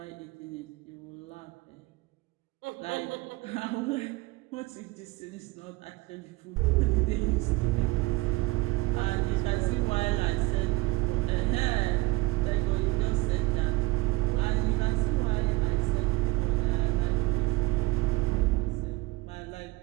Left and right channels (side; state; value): left; quieter; 20.8 dB